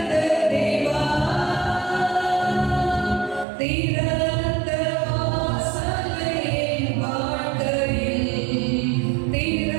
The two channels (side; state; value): left; drops out; at 3.5 s